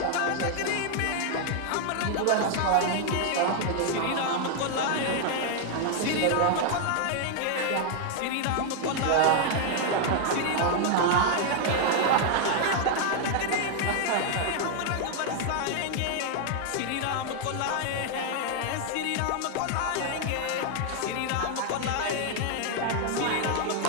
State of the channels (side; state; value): both; different; correlation 0.00